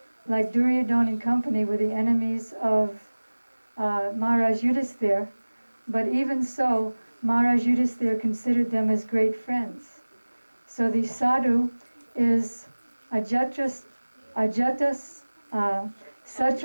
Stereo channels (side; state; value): both; inverted; correlation -1.00